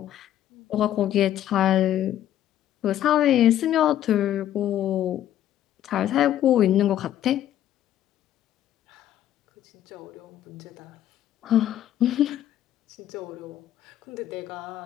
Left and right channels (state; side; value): quieter; right; 11.8 dB